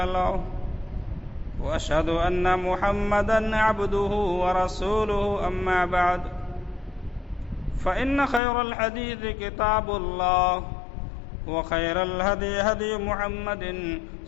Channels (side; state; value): right; drops out; at 8.4 s